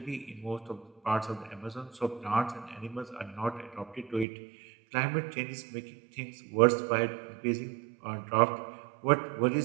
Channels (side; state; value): left; drops out; at 4.2 s